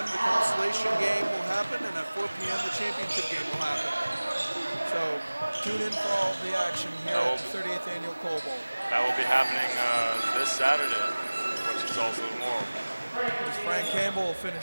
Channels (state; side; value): inverted; both; correlation -1.00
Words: the consolation game will happen. And at 4 p.m., the championship game will happen. So tune in for all the action here at the 38th Annual Coal Bowl. That will be happening this Saturday, which is also tomorrow. As Frank Campbell will